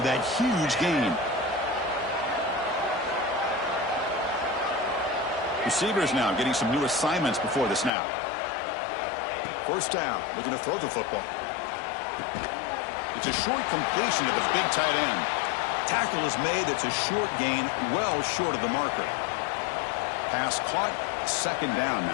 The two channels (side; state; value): right; drops out; at 7.9 s